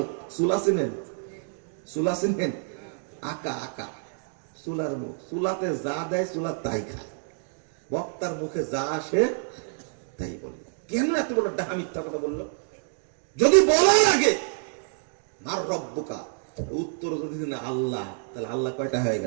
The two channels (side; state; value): left; silent; 60 dB below the other